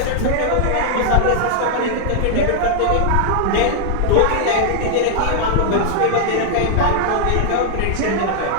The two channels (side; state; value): both; different; correlation 0.00